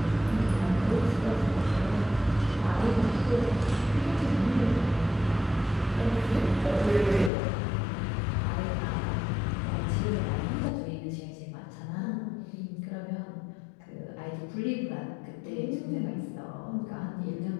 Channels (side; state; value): right; drops out; at 7.3 s